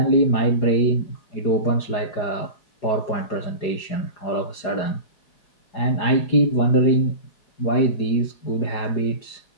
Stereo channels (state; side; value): late; right; 4.9 ms